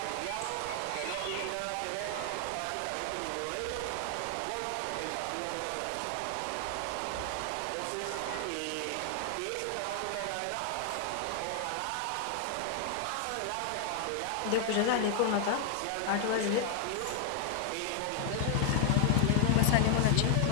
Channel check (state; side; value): different; both; correlation 0.00